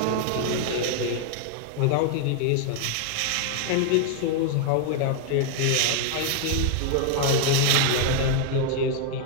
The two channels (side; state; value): both; different; correlation 0.00